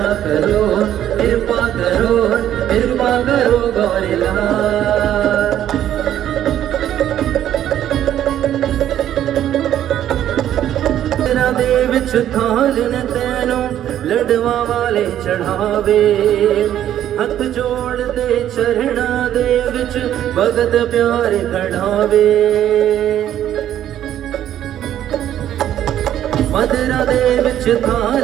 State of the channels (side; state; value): left; quieter; 11.3 dB